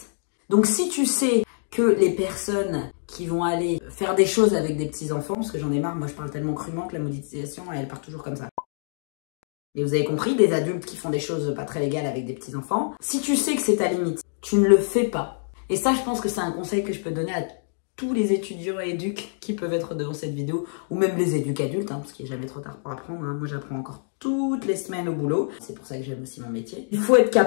Donc si tu sais que les personnes qui vont aller faire des choses avec des petits-enfants, parce que j'en ai marre, moi je parle tellement crûment que la monétisation, elle part toujours comme ça. Et vous avez compris, des adultes qui font des choses pas très légales avec des petits-enfants, si tu sais que c'est ta limite, tu ne le fais pas. Et ça, je pense que c'est un conseil que je peux donner à tous les étudiants et éduques qui peuvent être devant cette vidéo, ou même les éduques adultes, parce qu'il n'est jamais trop tard pour apprendre. Moi, j'apprends encore toutes les semaines au boulot. C'est pour ça que j'aime aussi mon métier. Il faut être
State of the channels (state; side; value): silent; right; digital silence